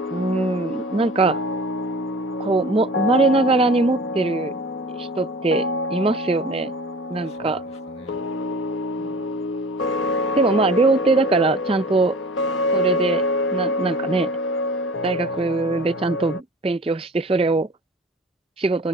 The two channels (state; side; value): normal; both; correlation 0.42